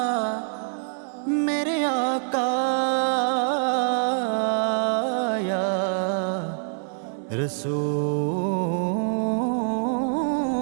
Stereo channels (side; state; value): left; silent; 59 dB below the other